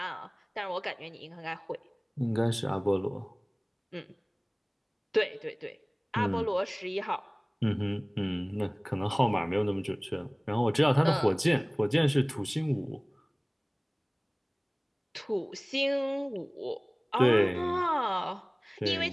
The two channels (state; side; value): identical; both; correlation 1.00